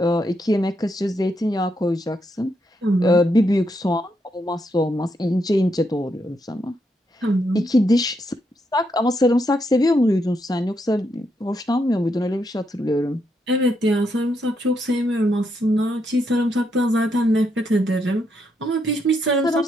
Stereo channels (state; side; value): normal; both; correlation 0.79